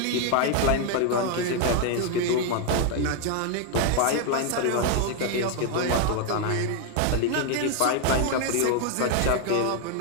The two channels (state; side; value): different; both; correlation 0.00